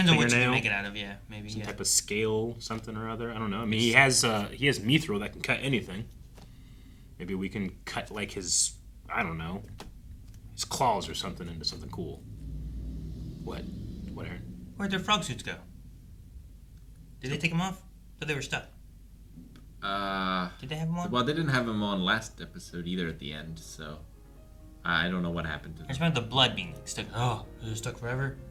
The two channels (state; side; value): identical; both; correlation 1.00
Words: on what you can make it out of. Yeah, maybe some type of scale, something or other. I don't know. I mean, he has mithril that can cut anything. Maybe we can cut like his, I don't know, his claws or something into something cool. What? What, Aaron? Where'd their frog suits go? Did they take them off? But they were stuck. Did they have them on? Well, they didn't have them on last episode either at the end, so I don't know what happened to them. I just remember the blood being stuck. Oh, they're stuck forever?